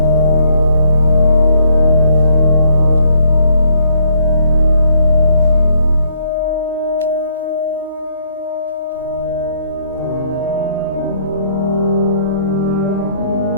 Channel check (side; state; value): both; inverted; correlation -0.69